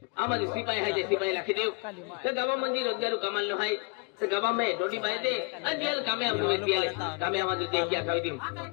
आम्हाला सिपाही आहे ते सिपाही लाखी देऊ तर गावामध्ये रोजगार कमाल आहे तर गावामध्ये रोटी पाहिजे आणि दियाल कामे आम्हाला दियाले कामे आम्हाला ते क्या खावी देऊ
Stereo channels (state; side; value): quieter; right; 32.4 dB